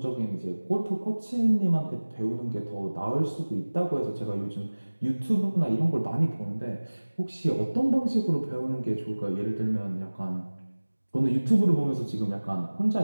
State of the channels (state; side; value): inverted; both; correlation -1.00